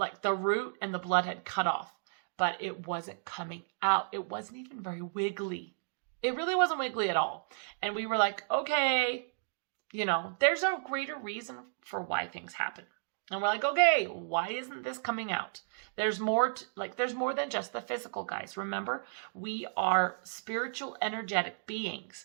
the root and the blood had cut off, but it wasn't coming out. It wasn't even very wiggly. It really wasn't wiggly at all. And we were like, okay, there's a greater reason for why things happen. And we're like, okay, why isn't this coming out? There's more, there's more than just the physical, guys. Remember, we are spiritual, energetic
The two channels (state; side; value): silent; left; digital silence